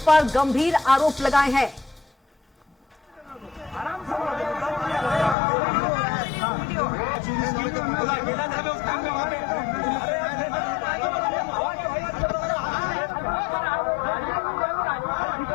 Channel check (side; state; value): right; drops out; at 5.4 s